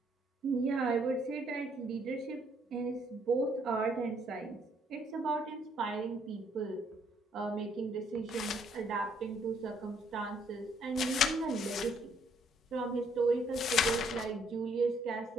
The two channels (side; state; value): both; normal; correlation 0.67